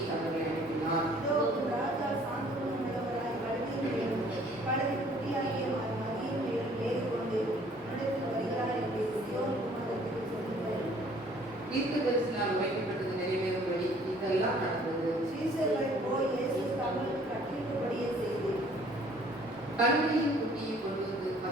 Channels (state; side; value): normal; both; correlation 0.57